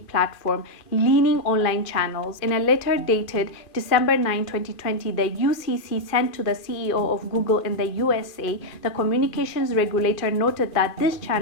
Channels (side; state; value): right; late; 2.4 ms